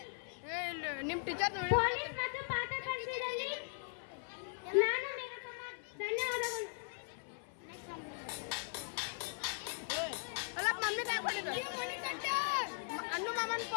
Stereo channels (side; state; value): right; silent; 52 dB below the other